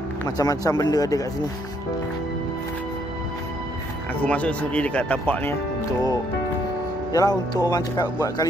Macam-macam benda ada kat sini. Aku masuk sendiri dekat tapak ni untuk, yalah, untuk orang cakap buat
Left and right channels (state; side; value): normal; both; correlation 0.69